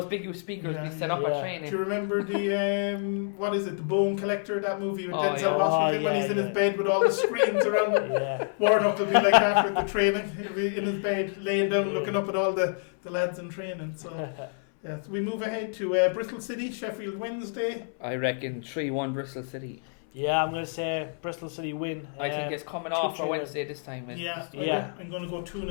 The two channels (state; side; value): silent; right; 59 dB below the other